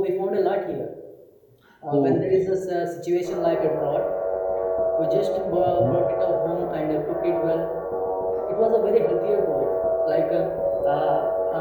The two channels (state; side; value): identical; both; correlation 1.00